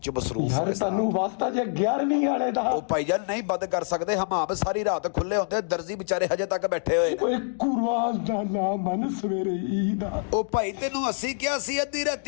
ਮਸਰੂਫ ਯਾਰ ਹੋਵੇ। ਤੁਹਾਨੂੰ ਵਾਸਤਾ ਜੇ 11ਵੀਂ ਵਾਲੇ ਦਾ ਉਹ ਭਾਈਜਾਨ ਨਹੀਂ ਬੰਦ ਕਰ ਸਕਦੇ, ਹਮਾਮ ਸਾਰੀ ਰਾਤ ਖੁੱਲੇ ਹੁੰਦੇ, ਦਰਜੀ ਵਿਚਾਰੇ ਹਜੇ ਤੱਕ ਬੈਠੇ ਹੋਏ। ਓਏ ਕੁਰਬਾਨ ਦਾ ਨਾ ਮਨ ਸਵੇਰੇ ਈਦ ਆ। ਉਹ ਭਾਈ ਤੈਨੂੰ ਅਸੀਂ ਕਿਹਾ ਸੀ ਅੱਧੀ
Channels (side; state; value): right; silent; digital silence